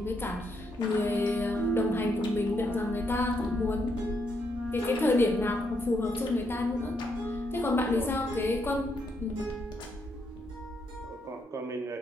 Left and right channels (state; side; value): normal; both; correlation 0.77